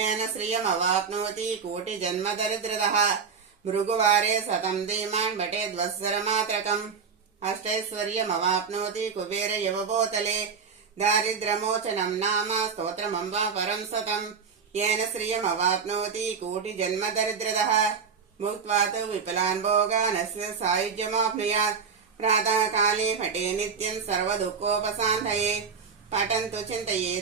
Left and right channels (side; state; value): left; quieter; 5.9 dB